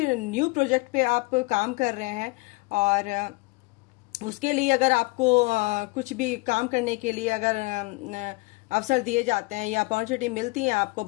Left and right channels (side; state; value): right; quieter; 26.0 dB